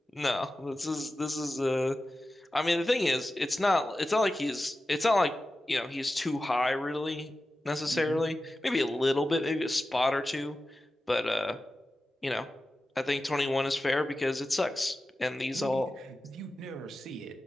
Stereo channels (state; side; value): normal; both; correlation 0.94